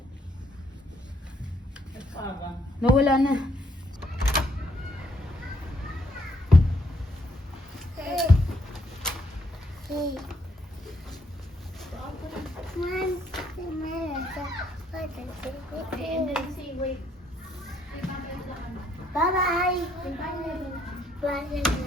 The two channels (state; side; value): normal; both; correlation 0.71